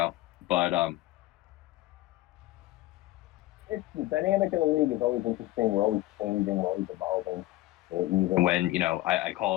But it's the dynamic of the league is always interesting. We're always changing, we're always evolving. Even when, I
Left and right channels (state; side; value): quieter; right; 17.0 dB